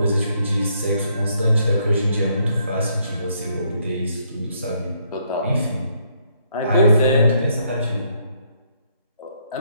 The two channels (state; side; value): inverted; both; correlation -0.71